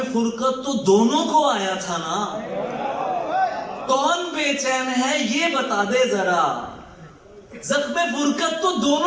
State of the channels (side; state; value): both; identical; correlation 1.00